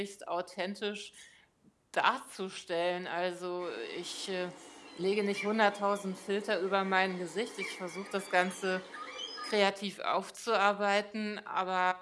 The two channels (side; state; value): both; identical; correlation 1.00